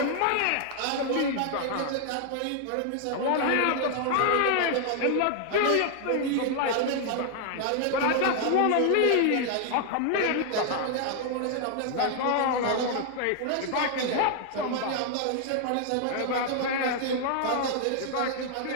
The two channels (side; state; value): both; different; correlation 0.00